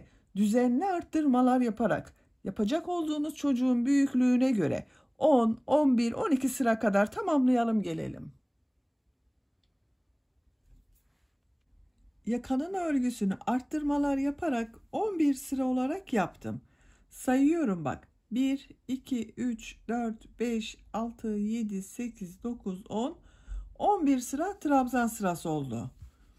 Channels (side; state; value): both; identical; correlation 1.00